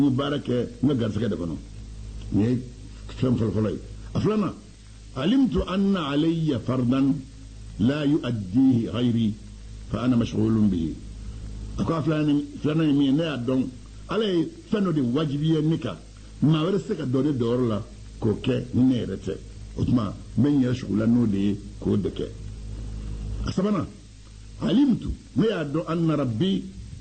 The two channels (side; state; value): both; identical; correlation 1.00